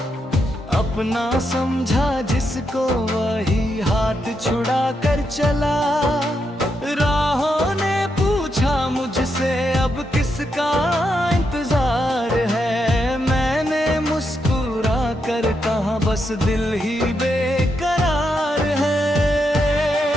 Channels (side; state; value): both; normal; correlation 0.82